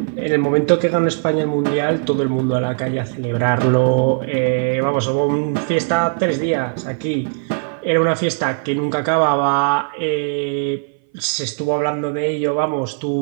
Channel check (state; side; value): silent; left; 59 dB below the other